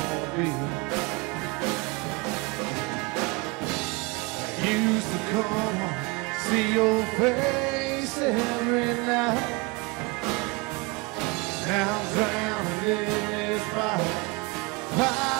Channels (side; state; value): left; quieter; 26.7 dB